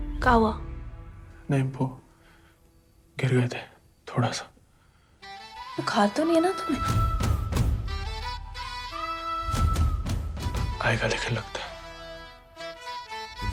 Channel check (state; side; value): identical; both; correlation 1.00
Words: क्या हुआ? नहीं, वो गिर गए थे थोड़ा सा। बुखार तो नहीं है ना तुम्हें? आएगा लेकिन लगता है।